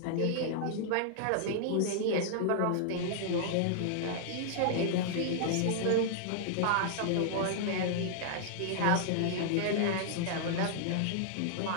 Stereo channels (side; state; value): both; different; correlation -0.01